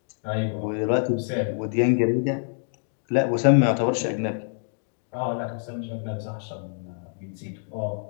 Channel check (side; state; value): right; silent; digital silence